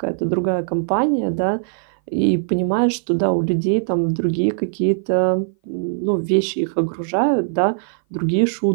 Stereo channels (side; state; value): left; silent; 58 dB below the other